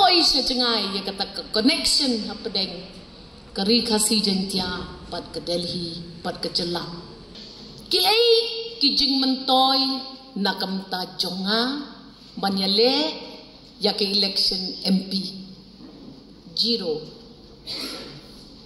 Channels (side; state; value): both; identical; correlation 1.00